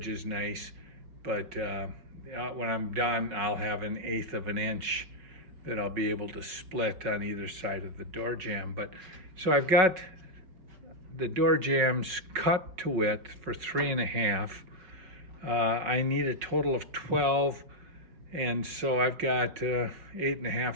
nice. But when I'm done, I'll have 1/8 of an inch that I'll be able to split on either side of the door jamb. But so I've got the door jambs cut to width for 3.5. I need a total of 12, and so I've got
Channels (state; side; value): late; left; 5.3 ms